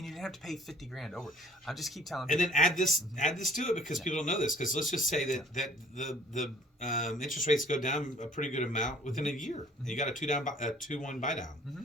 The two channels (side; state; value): both; normal; correlation 0.53